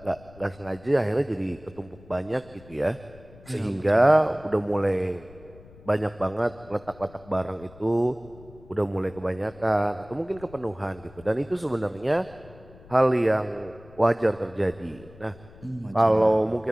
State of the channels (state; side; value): noise; left; rumble, 22 dB below the sound